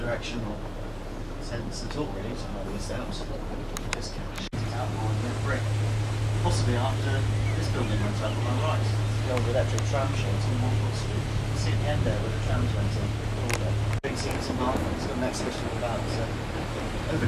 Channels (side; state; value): both; identical; correlation 1.00